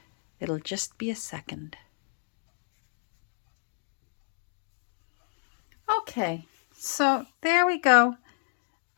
it'll just be a second. Okay, so there we go.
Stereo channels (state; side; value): silent; right; digital silence